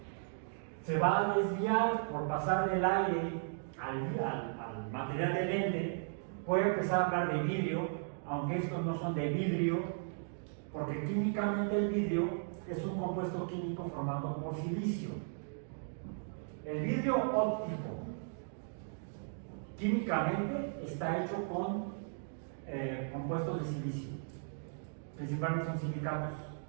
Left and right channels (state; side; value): silent; left; digital silence